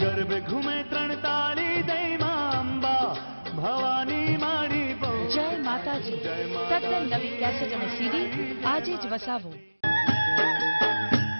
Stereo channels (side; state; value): both; inverted; correlation -1.00